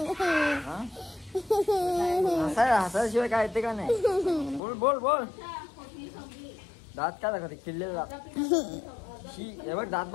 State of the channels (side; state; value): right; drops out; at 4.6 s